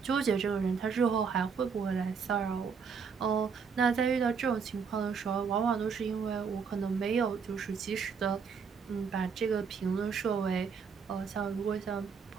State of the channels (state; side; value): quieter; left; 6.0 dB